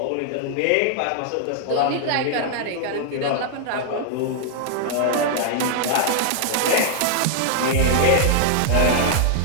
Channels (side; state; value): both; different; correlation 0.00